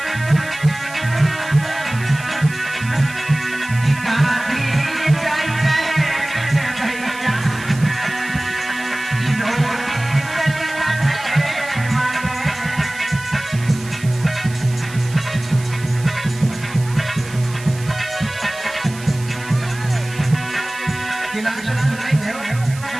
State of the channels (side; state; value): right; noise; hiss, 16 dB below the sound